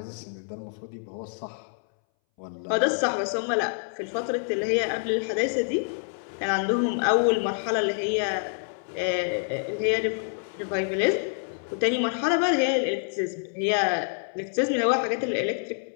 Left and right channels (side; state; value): right; silent; 60 dB below the other